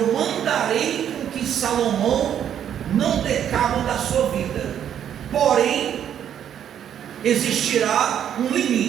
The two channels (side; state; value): left; quieter; 9.6 dB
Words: mandarei com que Salomão não dê cabo da sua vida. Porém, existirá um